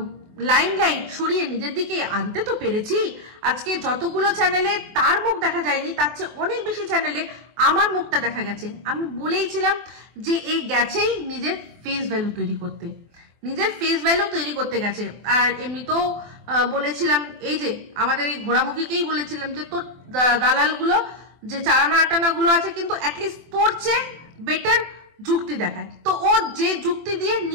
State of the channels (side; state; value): left; late; 24 ms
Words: লাইমলাইট সরিয়ে নিজের দিকে আনতে তো পেরেছি। আজকে যতগুলো চ্যানেলে তার মুখ দেখা যায়নি তার চেয়ে অনেক বেশি চ্যানেলে আমার মুখটা দেখা গেছে। আমি বলেইছিলাম যে এই গেছেই নিজের ফেস ভ্যালু তৈরি করতে, নিজের ফেস ভ্যালু তৈরি করতে গেছে। আর এমনিতেও বলেছিলাম এই যে আমাদের এই ঘোড়ামুখীকেই বলেছিলাম যে তোর দালালগুলো যে চারানা আটানা গুলো আছে কিন্তু অ্যাটলিস্ট তোর চেয়ে বেটার যুক্তি দেখায়। তো ও যে যুক্তি দিয়ে